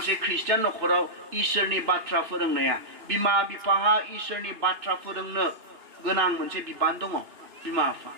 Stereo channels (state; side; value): late; left; 2.8 ms